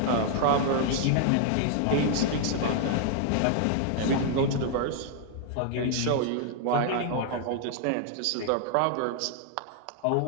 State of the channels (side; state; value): both; different; correlation 0.00